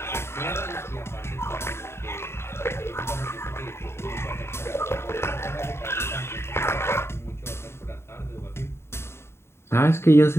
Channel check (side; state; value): right; late; 0.12 ms